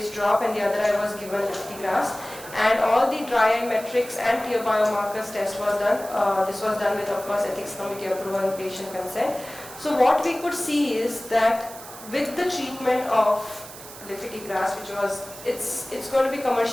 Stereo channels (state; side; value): noise; right; hiss, 15 dB below the sound